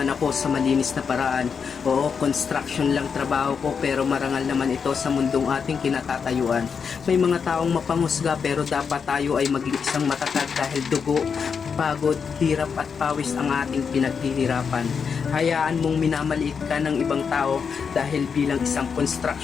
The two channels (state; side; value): quieter; right; 6.2 dB